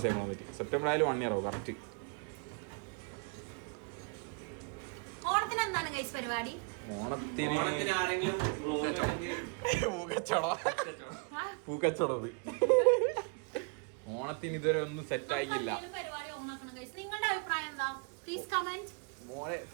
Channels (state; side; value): quieter; left; 35.2 dB